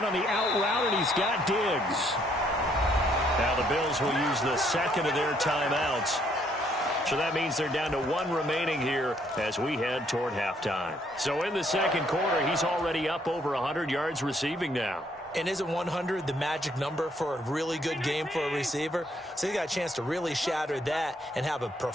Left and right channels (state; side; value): normal; both; correlation 0.69